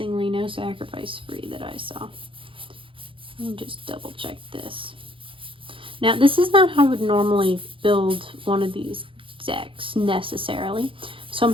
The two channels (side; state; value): left; late; 0.25 ms